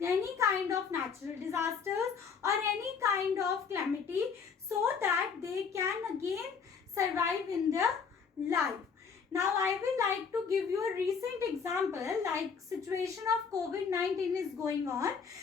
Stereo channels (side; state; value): right; quieter; 6.0 dB